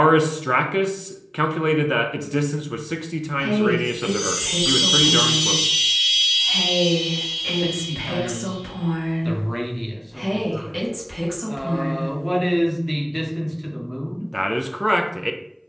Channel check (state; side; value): identical; both; correlation 1.00